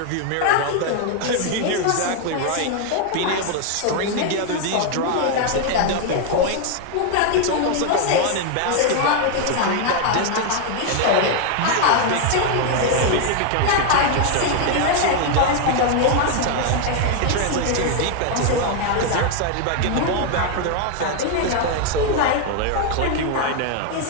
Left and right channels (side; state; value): both; different; correlation 0.01